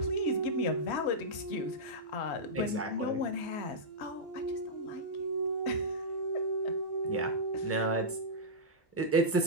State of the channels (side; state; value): both; normal; correlation -0.12